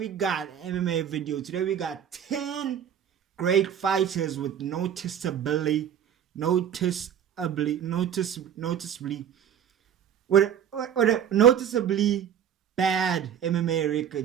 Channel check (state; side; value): quieter; left; 9.1 dB